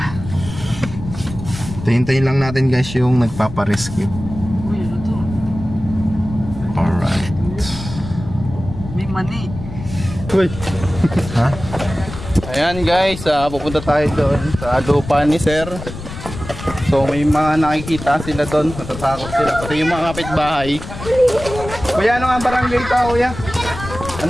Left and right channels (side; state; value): left; noise; rumble, 11 dB below the sound